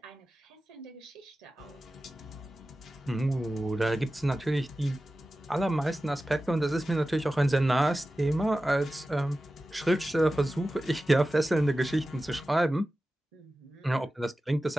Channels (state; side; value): normal; both; correlation 0.95